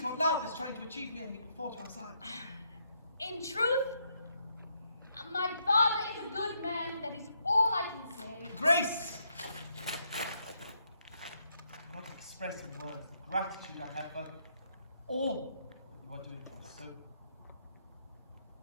what love is trying to achieve here, he will fall to our side? In truth, my father is a good man. That is all I can say. Grace! I cannot express in words the gratitude I have for all that you are doing for us. So,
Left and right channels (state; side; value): inverted; both; correlation -0.76